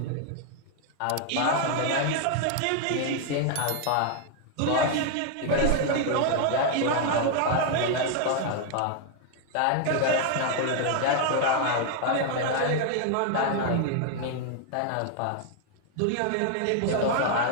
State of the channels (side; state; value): both; different; correlation 0.00